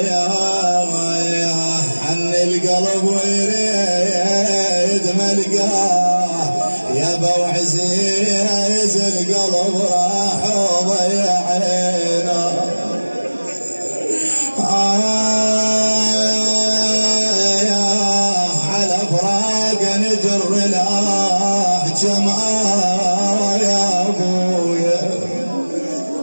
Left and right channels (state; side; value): inverted; both; correlation -1.00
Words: حن القلب ويريد ملقاه يا ابو عزيز القلب راح وضيعنا على فراق نجر الاحجام يا ابويا